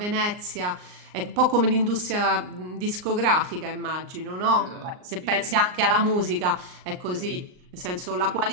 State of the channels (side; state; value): left; late; 39 ms